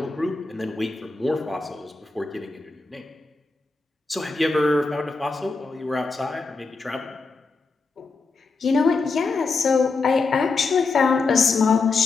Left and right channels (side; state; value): right; quieter; 4.1 dB